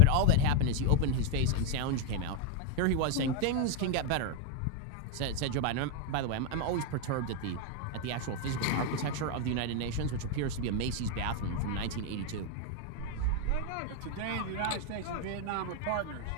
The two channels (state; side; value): different; both; correlation 0.01